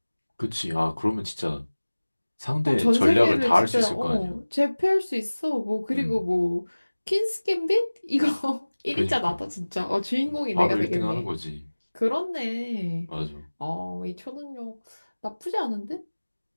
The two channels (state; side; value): inverted; both; correlation -1.00